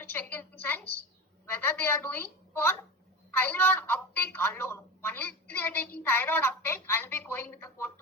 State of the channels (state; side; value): normal; both; correlation 0.27